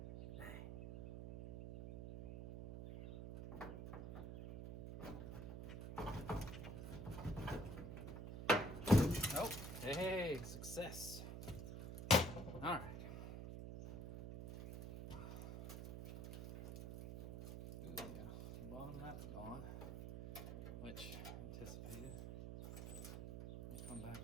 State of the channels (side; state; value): right; noise; hum, 7 dB below the sound